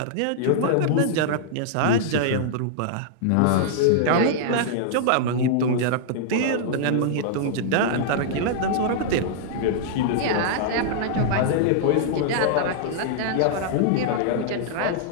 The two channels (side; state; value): both; different; correlation -0.01